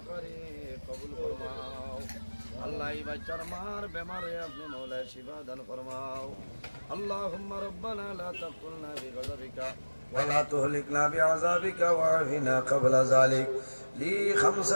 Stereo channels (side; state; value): both; inverted; correlation -1.00